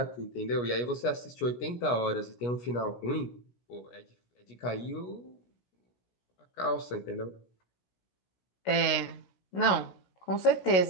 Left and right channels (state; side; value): late; right; 16 ms